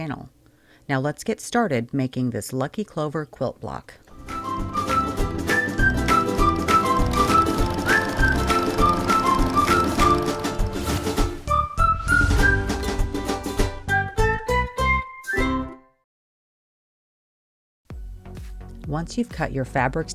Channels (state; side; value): identical; both; correlation 1.00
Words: Now let's get started making this Lucky Clover quilt block. Once you've cut your fabrics